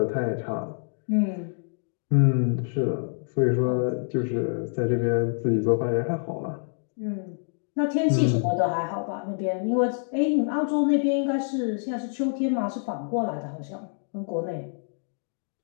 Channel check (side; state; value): right; silent; digital silence